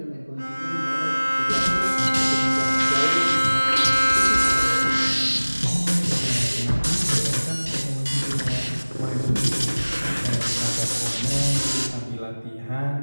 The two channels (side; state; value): both; inverted; correlation -1.00